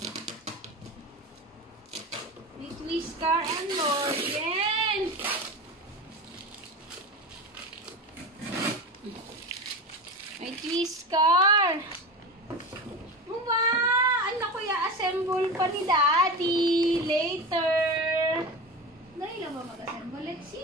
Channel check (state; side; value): normal; both; correlation 0.26